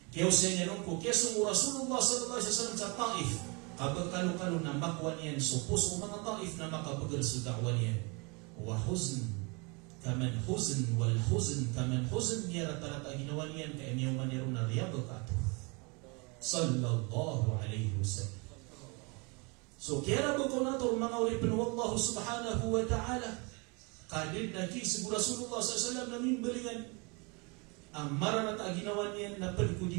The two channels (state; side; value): quieter; left; 30.4 dB